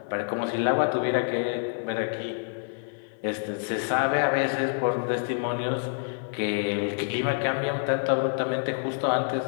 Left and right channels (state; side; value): silent; right; 60 dB below the other